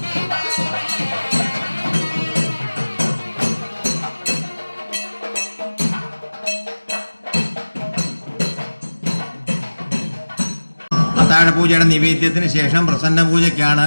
അത്താഴപൂജയുടെ നിവേദ്യത്തിന് ശേഷം പ്രസന്ന പൂജയ്ക്കാണ്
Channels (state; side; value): inverted; both; correlation -1.00